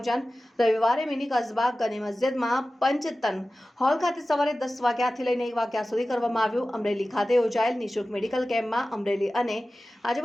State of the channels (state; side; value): normal; both; correlation 0.96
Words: રવિવારે મિની કસ્બા ગની મસ્જિદમાં પંચતન હોલ ખાતે સવારે 10 વાગ્યાથી લઈને 1 વાગ્યા સુધી કરવામાં આવ્યું. અમરેલી ખાતે યોજાયેલ નિઃશુલ્ક મેડિકલ કેમ્પમાં અમરેલી અને